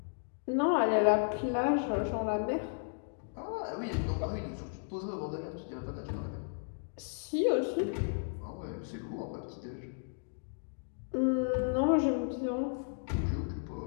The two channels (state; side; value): silent; right; digital silence